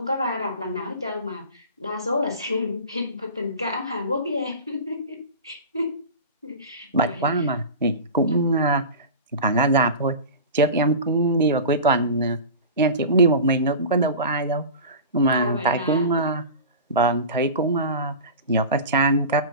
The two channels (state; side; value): inverted; both; correlation -0.32